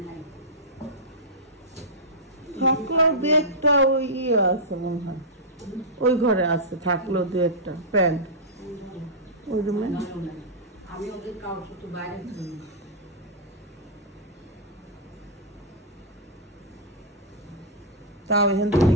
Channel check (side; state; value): both; normal; correlation -0.11